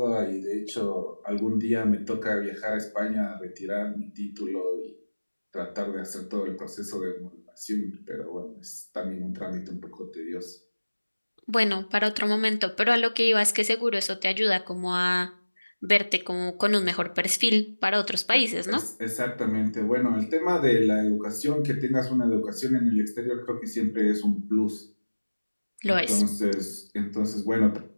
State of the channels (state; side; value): inverted; both; correlation -1.00